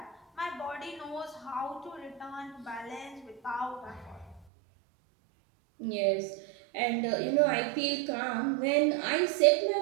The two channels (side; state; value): left; drops out; at 4.5 s